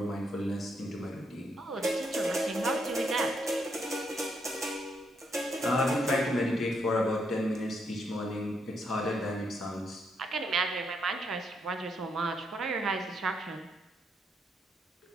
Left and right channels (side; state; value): both; normal; correlation 0.77